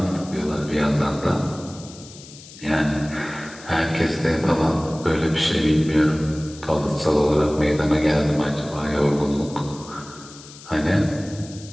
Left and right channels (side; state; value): left; noise; hiss, 18 dB below the sound